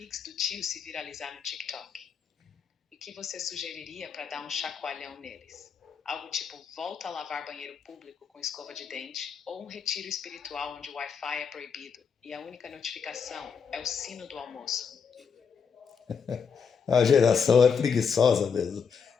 do tio se viralizar no TikTok. E o que você sugeriria para dar um chacoalhão neles? Algo tipo volta a lavar banheiro público com escova de dente ou um retiro espiritual onde o Wi-Fi é proibido e a única notificação é o sino do almoço. A geração é preguiçosa mesmo.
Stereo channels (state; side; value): quieter; right; 6.3 dB